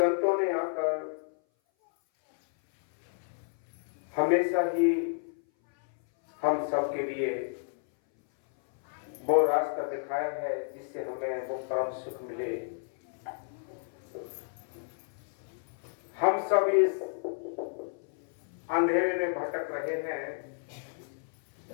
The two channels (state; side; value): silent; right; 57 dB below the other